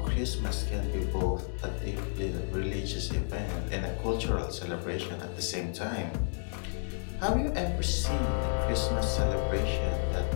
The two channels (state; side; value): silent; right; digital silence